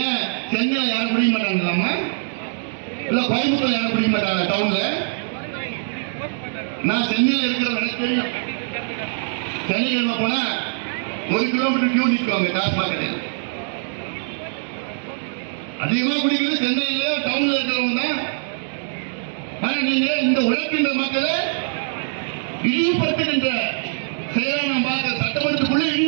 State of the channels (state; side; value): silent; left; digital silence